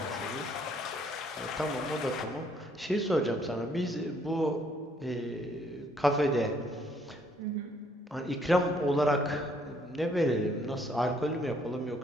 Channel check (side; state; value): both; normal; correlation 0.66